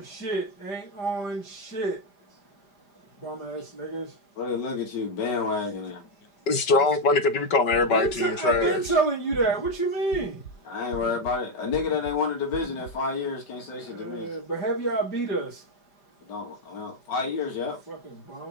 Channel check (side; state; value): right; late; 5.2 ms